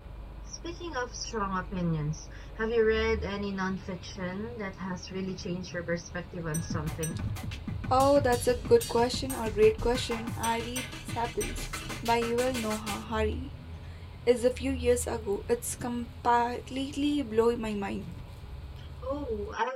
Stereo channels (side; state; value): both; identical; correlation 1.00